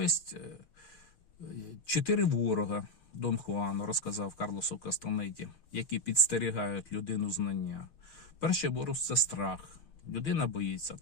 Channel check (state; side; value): late; right; 6.6 ms